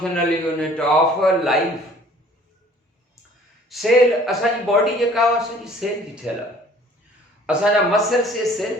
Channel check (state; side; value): normal; both; correlation 0.53